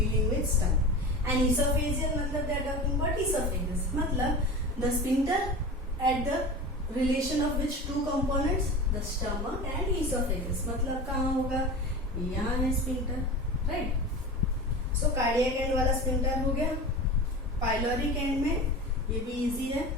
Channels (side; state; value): both; normal; correlation 0.31